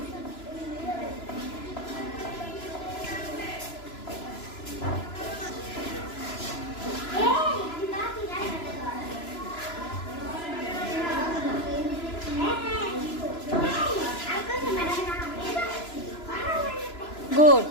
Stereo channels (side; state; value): right; late; 3.0 ms